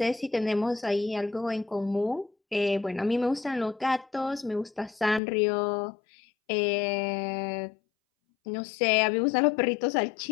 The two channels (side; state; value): right; drops out; at 5.2 s